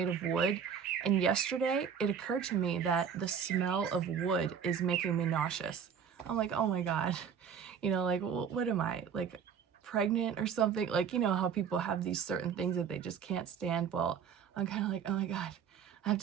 of wood. And yesterday it occurred to me that the smell of wood is making me nauseous. I'm like, oh my God, like, what am I, like pregnant or something? Like, how people have these certain things that they just can't stand. Well, I'm kind of like, oh my God, I have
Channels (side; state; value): left; quieter; 7.4 dB